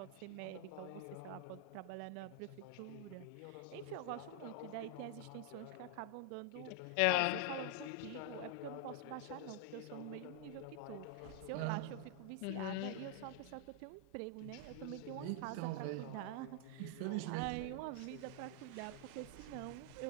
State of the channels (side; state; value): both; different; correlation 0.00